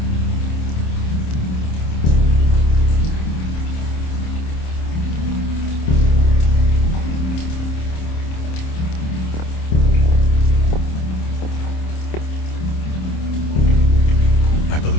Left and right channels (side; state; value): right; late; 27 ms